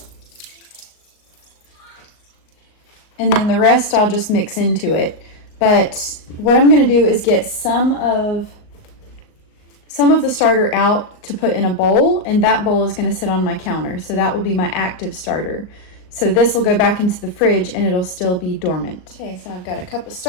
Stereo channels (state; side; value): late; right; 38 ms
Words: and then the rest I'll just mix into it. But what I'm gonna do is get some of the starter out to put in a bowl, and that bowl is gonna sit on my counter. So that will be my active starter. So this will go back into the fridge and it'll still be dormant. Okay, so I've got a cup of